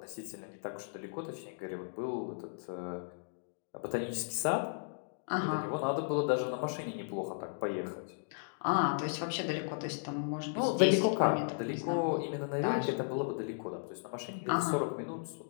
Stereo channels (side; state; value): right; silent; digital silence